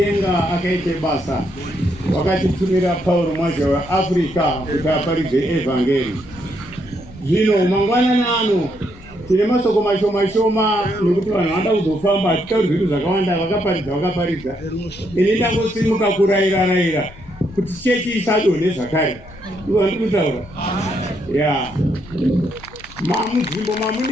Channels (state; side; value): noise; left; rumble, 20 dB below the sound